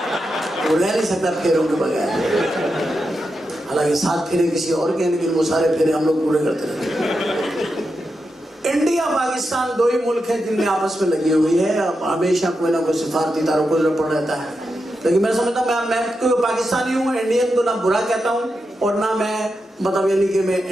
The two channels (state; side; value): normal; both; correlation 0.87